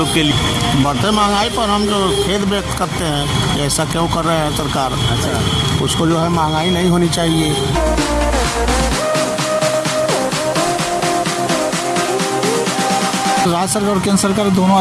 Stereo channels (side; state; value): both; identical; correlation 1.00